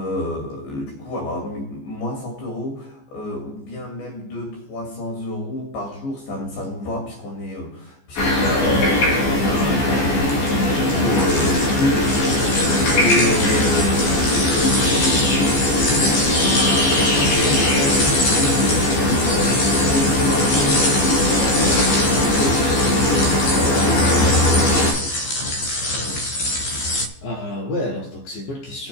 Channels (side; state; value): right; late; 14 ms